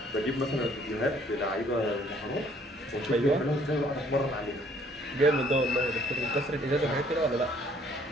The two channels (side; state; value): both; normal; correlation 0.61